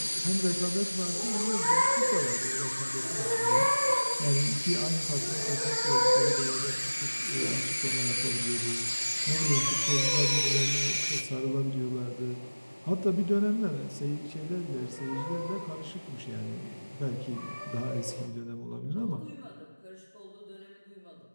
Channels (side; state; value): both; inverted; correlation -1.00